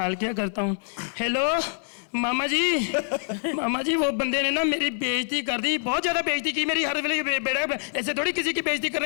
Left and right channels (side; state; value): right; silent; digital silence